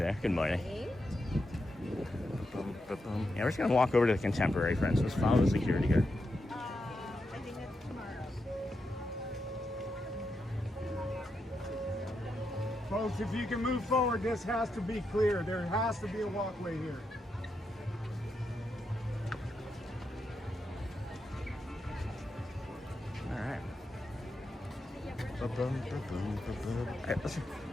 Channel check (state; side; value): normal; both; correlation 0.85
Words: Good morning. Yeah, we're just gonna walk over to the Contemporary, friends. Let's follow the security guard. I think that's tomorrow. Folks, if you can move forward, this has to be clear. There has to be a walkway here. All right.